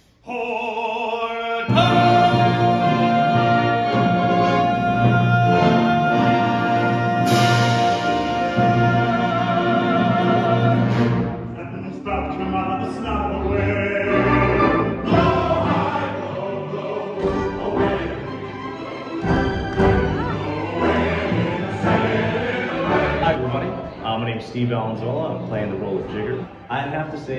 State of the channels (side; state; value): both; identical; correlation 1.00